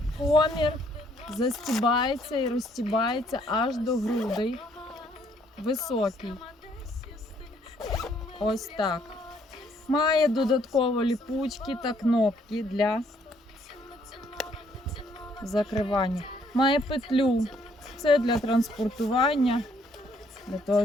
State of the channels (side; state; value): both; normal; correlation 0.67